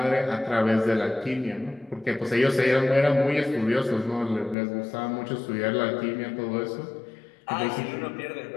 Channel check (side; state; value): right; drops out; at 4.5 s